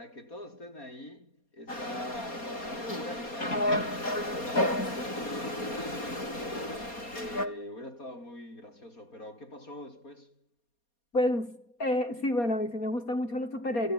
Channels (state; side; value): late; right; 4.2 ms